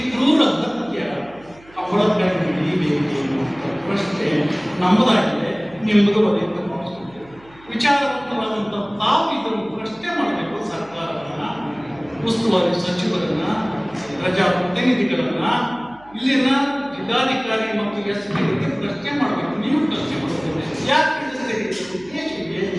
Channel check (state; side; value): noise; right; hum, 25 dB below the sound